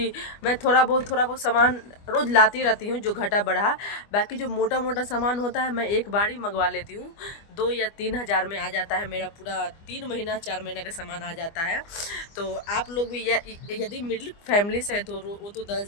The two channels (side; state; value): right; late; 25 ms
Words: मैं थोड़ा बहुत सामान रोज़ लाती रहती हूँ जो घटा बढ़ा। बाकी जो मोटा मोटा सामान होता है मैं एक बार ही मंगवा लेती हूँ। 2 या 3 हज़ार में आ जाता है मेरा पूरा 3 महीना 4 महीने का सामान आ जाता है। तो आप लोग भी यदि मिडिल फैमिली से है तो वो तो